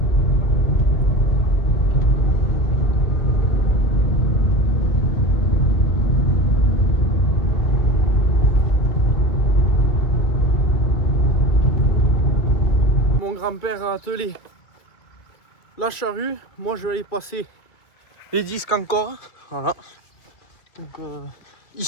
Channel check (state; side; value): late; right; 2.2 ms